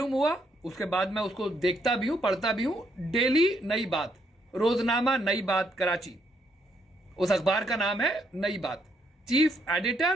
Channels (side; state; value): both; normal; correlation 0.73